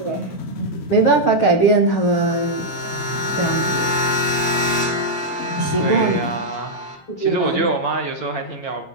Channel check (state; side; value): late; right; 8.5 ms